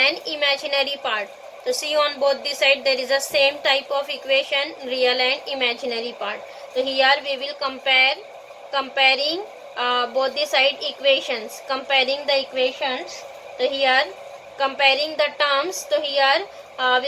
imaginary part. So see, on both the side there is a same type of equation, real and imaginary part. So here we will comparing both the side equations, comparing the equations. So here comparing the terms, so here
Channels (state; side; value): identical; both; correlation 1.00